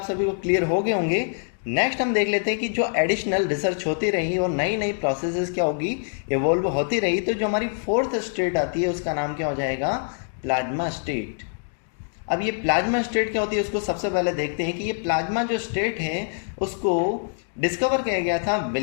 सभी को क्लियर हो गए होंगे। नेक्स्ट हम देख लेते हैं कि जो एडिशनल रिसर्च होती रही और नई नई प्रोसेसेस क्या होगी, इवॉल्व होती रही, तो जो हमारी फोर्थ स्टेट आती है उसका नाम क्या हो जाएगा, प्लाज्मा स्टेट। अब ये प्लाज्मा स्टेट क्या होती है उसको सबसे पहले देखते हैं कि ये प्लाज्मा जो स्टेट है उसको डिस्कवर किया गया था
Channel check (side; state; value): right; silent; digital silence